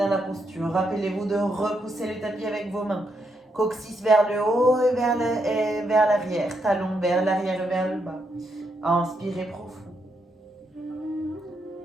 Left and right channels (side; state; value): both; normal; correlation 0.79